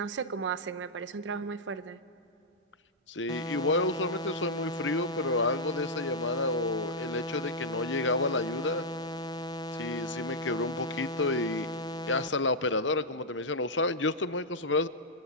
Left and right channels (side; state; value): both; normal; correlation -0.05